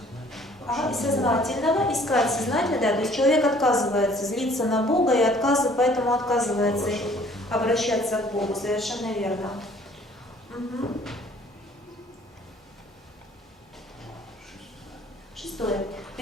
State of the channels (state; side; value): normal; both; correlation 0.56